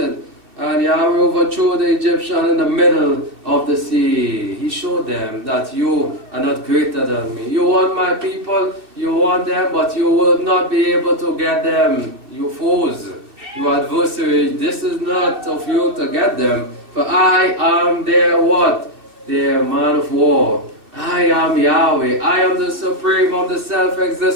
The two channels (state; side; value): late; left; 2.6 ms